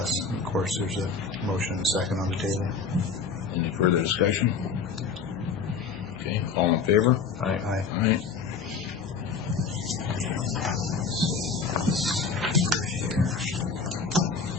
And of course, there's a motion and a second on the table. Any further discussion? Okay, all in favor? Aye. Aye.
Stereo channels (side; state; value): right; quieter; 5.3 dB